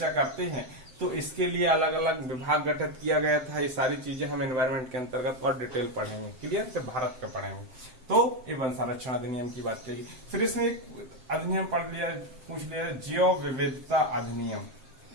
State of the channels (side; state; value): left; late; 7.6 ms